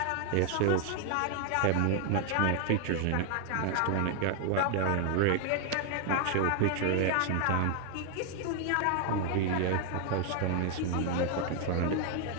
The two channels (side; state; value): both; different; correlation 0.00